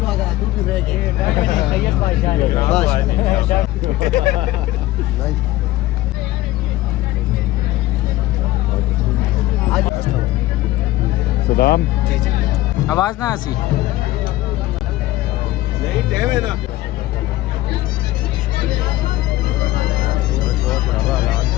तू भी रह गया बस। सलाम जी जी, आवाज ना आसी नहीं टाइम है ना।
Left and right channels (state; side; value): quieter; right; 16.6 dB